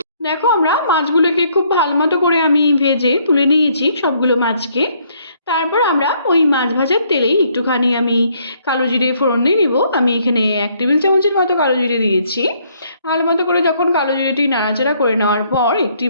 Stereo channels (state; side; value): inverted; both; correlation -0.67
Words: দেখো আমরা মাছগুলোকে খুব ভালো মতো করে আমি ভেজে তুলে নিয়েছি সবগুলো মাছকে। তারপর আমরা ওই মাছ ভাজার তেলেই একটুখানি আমি কালো জিরে ফোড়ন দিয়ে নিব। আমি এখানে 1 টেবিল চামচের মতো কালো জিরে দিয়েছি। ভালো মতো করে যখন কালো জিরেটি নাড়াচাড়া করে নেওয়ার পর একটি